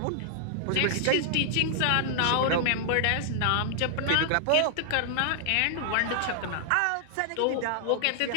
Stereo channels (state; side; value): different; both; correlation -0.01